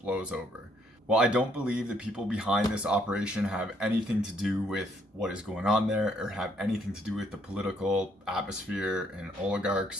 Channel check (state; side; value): normal; both; correlation 0.68